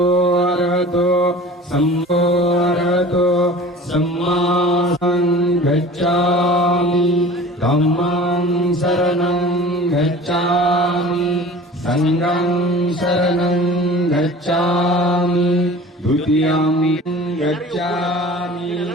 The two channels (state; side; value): normal; both; correlation 0.42